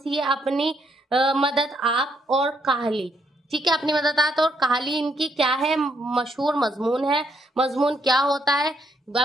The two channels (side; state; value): both; normal; correlation 0.74